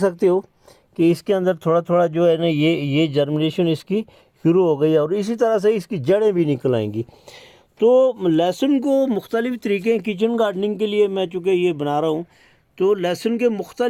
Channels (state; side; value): identical; both; correlation 1.00